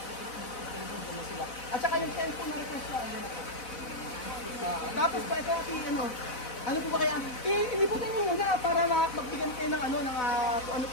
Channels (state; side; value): late; right; 4.0 ms